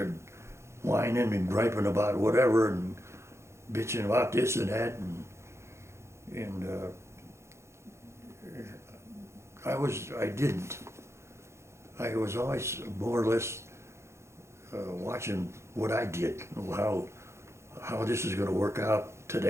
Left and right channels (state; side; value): late; left; 0.13 ms